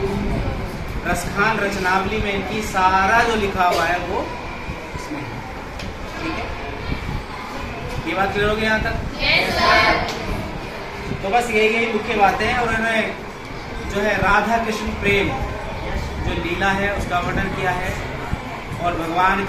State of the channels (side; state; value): both; identical; correlation 1.00